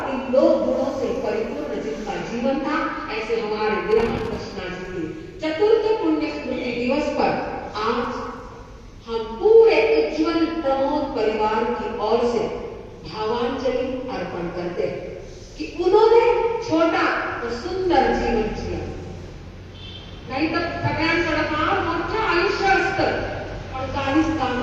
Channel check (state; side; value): identical; both; correlation 1.00